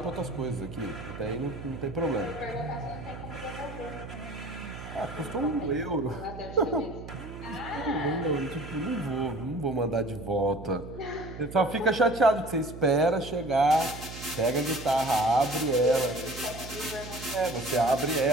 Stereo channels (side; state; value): right; noise; hum, 12 dB below the sound